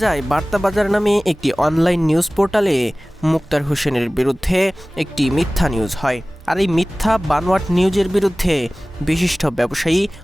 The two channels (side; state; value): both; normal; correlation 0.98